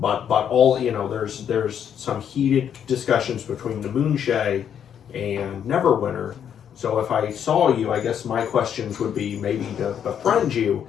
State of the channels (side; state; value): right; quieter; 8.7 dB